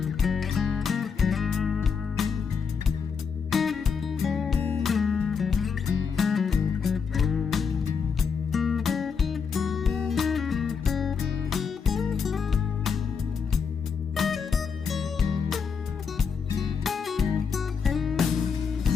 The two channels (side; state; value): right; quieter; 6.0 dB